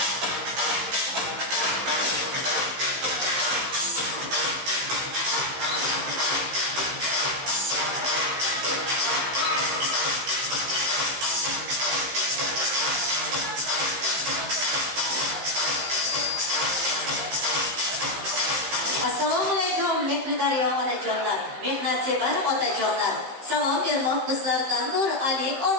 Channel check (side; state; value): left; late; 15 ms